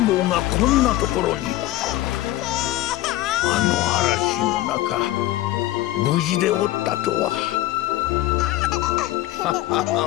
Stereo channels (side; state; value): right; quieter; 16.2 dB